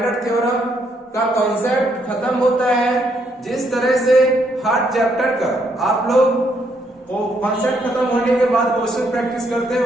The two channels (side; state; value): both; normal; correlation 0.73